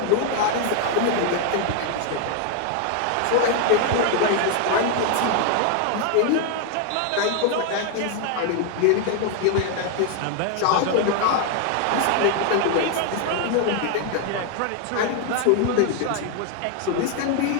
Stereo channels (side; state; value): both; different; correlation 0.00